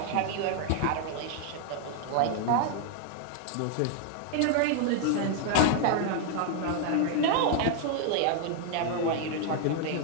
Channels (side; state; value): both; different; correlation 0.00